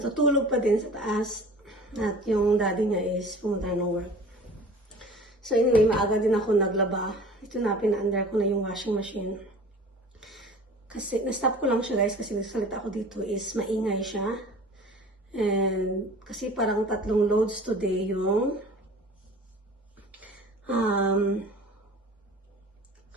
pa din sa taas at yung daddy niya is pumunta ng work. So, anyway, maaga din ako naglaba. Ito na, pina-under ko na yung washing machine. Kasi, na-stop ko lang siya, guys, kasi nagsalita ako dito is maingay siya. And, kasi parang 3 loads today yung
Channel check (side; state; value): both; normal; correlation 0.43